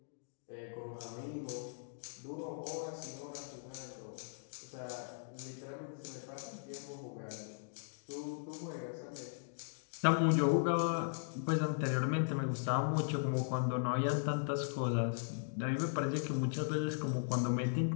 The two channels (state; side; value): silent; right; digital silence